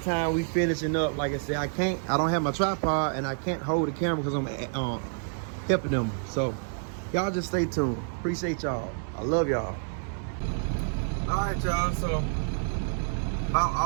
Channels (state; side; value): silent; left; 59 dB below the other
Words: time we finishing up. Like I said, I don't have my tripod and I can't hold the camera because I'm helping them. So y'all just stay tuned. Appreciate y'all. I love y'all. All right, y'all. So about